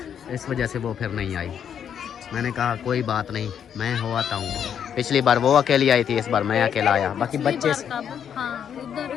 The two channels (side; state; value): right; quieter; 8.5 dB